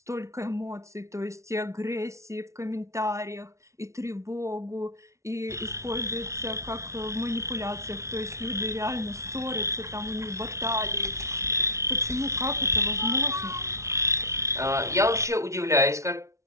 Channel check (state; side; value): late; left; 0.14 ms